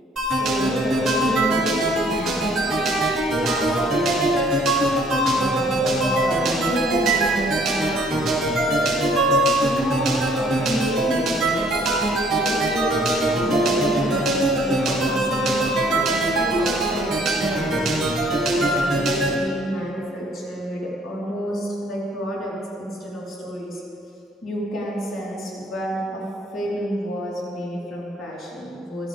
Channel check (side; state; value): both; normal; correlation 0.61